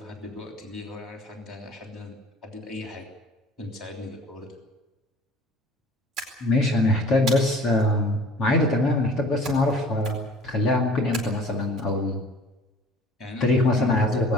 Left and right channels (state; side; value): normal; both; correlation 0.48